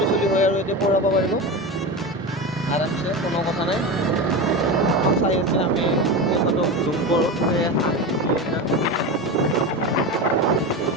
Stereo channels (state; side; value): normal; both; correlation 0.23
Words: চলি হয় আৰু এতিয়া পঢ়াব পাৰিব আৰামছে কোনো কথা নাই চাই আছে আমি সিহঁতক জুম কৰোঁ